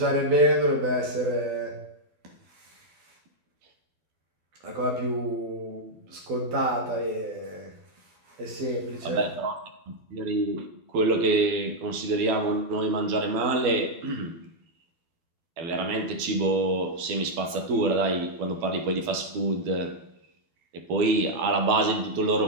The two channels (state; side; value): late; left; 12 ms